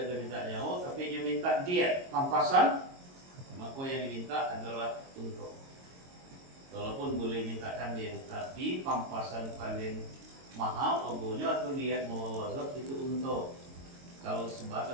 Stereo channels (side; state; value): left; late; 22 ms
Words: minta nyawa, tapi dia minta diet pampasan, maka yang diminta adalah untung. Walaupun boleh mintakan dia, tapi pampasan paling mahal ogonya atau diet muwaladzah itu untung. Kalau